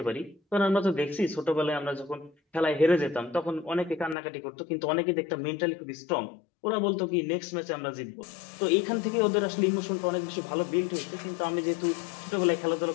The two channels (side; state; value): right; drops out; at 4.2 s